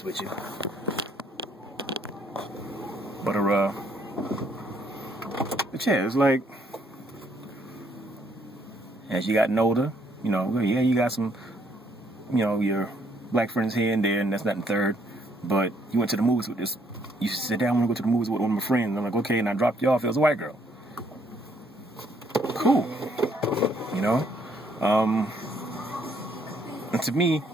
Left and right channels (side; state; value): both; normal; correlation 0.69